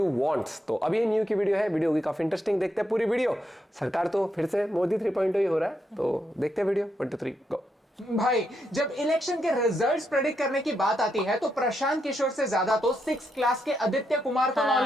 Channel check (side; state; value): both; normal; correlation 0.81